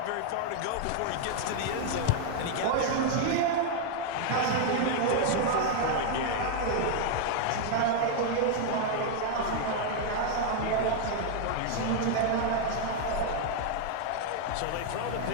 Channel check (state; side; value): different; both; correlation 0.00